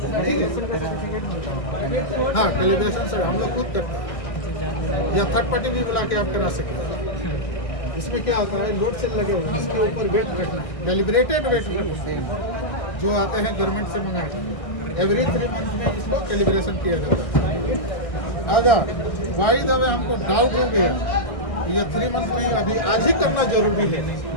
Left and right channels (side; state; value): right; late; 1.6 ms